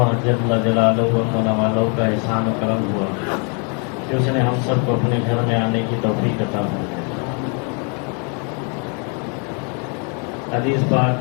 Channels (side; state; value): right; quieter; 37.2 dB